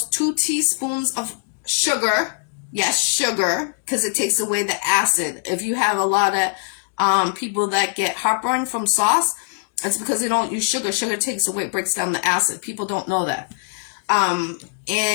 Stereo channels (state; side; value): silent; right; digital silence